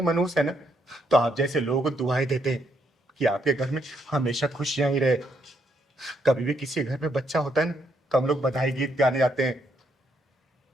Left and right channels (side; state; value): both; normal; correlation 0.75